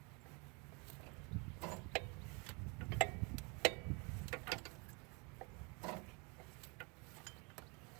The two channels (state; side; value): quieter; left; 31.5 dB